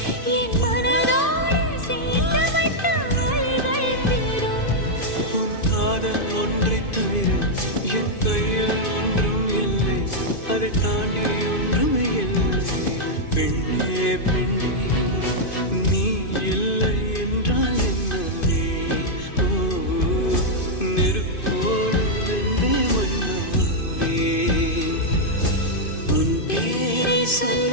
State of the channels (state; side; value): late; right; 2.5 ms